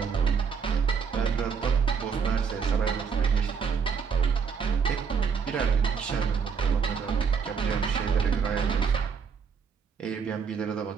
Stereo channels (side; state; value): left; quieter; 6.2 dB